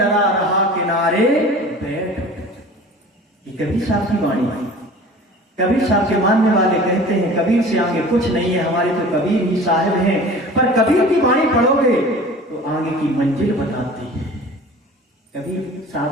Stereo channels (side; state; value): both; normal; correlation 0.41